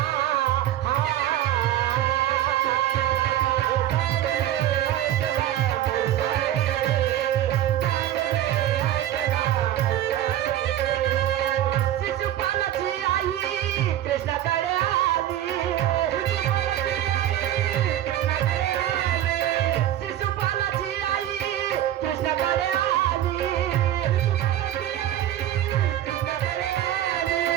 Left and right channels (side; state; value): left; quieter; 12.6 dB